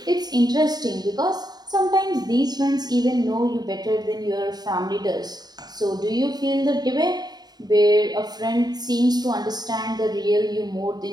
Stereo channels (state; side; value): late; left; 0.20 ms